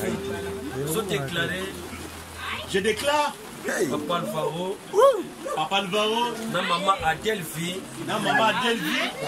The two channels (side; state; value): both; identical; correlation 1.00